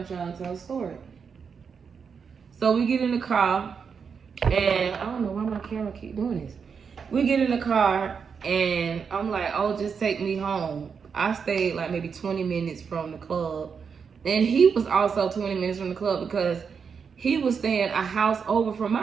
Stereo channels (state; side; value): quieter; left; 6.2 dB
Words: trying to tell a story. So we get in the car. And I don't know why my camera keep doing this. We get in the car and I'm like, oh, just take me home. I stayed like maybe 20 minutes from the club. And he was also 20 minutes from the club because he was staying a house over from